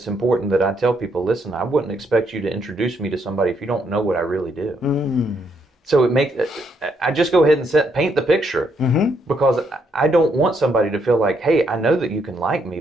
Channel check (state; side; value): normal; both; correlation 0.74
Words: important that I tell people, listen, I wouldn't expect you to introduce me to somebody if you don't know what I really do. So I just go ahead and paint the picture, because I don't want somebody to feel like, hey, I know that you can like me,